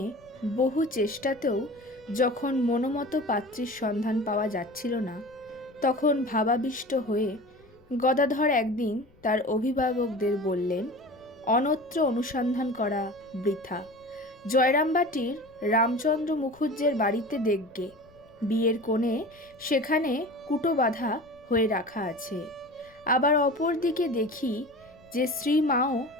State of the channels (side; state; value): left; noise; rumble, 29 dB below the sound